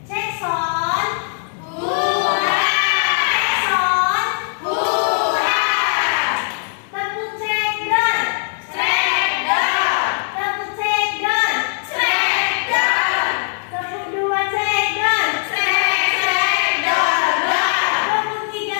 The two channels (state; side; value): silent; right; digital silence